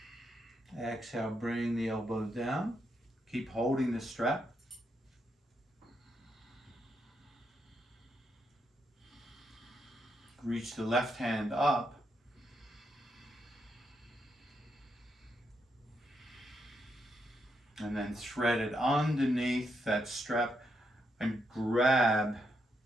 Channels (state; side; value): normal; both; correlation 0.80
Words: Exhale, bring the elbow down. Keep holding the strap. Reach the left hand up. And then thread it underneath that strap and grab